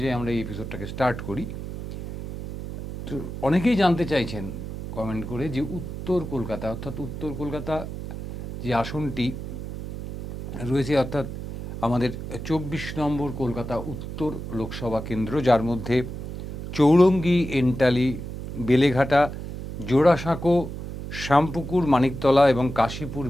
আমরা এই এপিসোডটাকে স্টার্ট করি। তো অনেকেই জানতে চাইছেন কমেন্ট করে যে উত্তর কলকাতা, অর্থাৎ উত্তর কলকাতা যে আসনটি রয়েছে, অর্থাৎ আমাদের 24 নম্বর কলকাতা উত্তর লোকসভা কেন্দ্র, যার মধ্যে চৌরঙ্গি, এন্টালি, বেলেঘাটা, জোড়াসাঁকো, শ্যামপুকুর, মানিকতলা এবং কাশীপুর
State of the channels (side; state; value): right; noise; hum, 8 dB below the sound